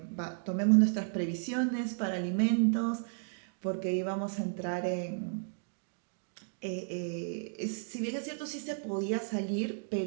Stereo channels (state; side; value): silent; left; digital silence